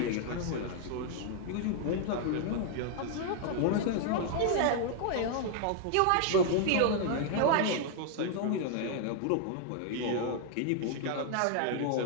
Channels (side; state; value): both; different; correlation 0.00